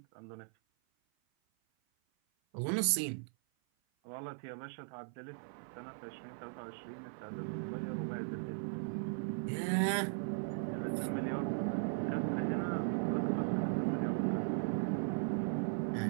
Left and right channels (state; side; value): silent; left; 52 dB below the other